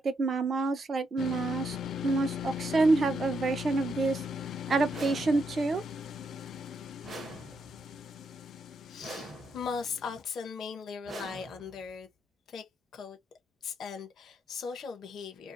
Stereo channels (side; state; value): both; normal; correlation 0.79